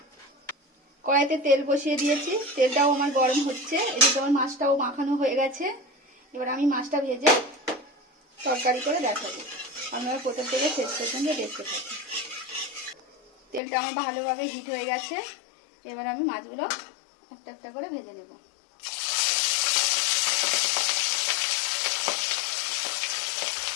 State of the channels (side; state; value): right; drops out; at 13.6 s